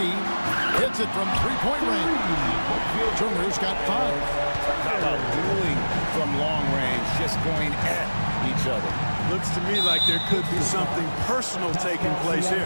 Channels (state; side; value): inverted; both; correlation -1.00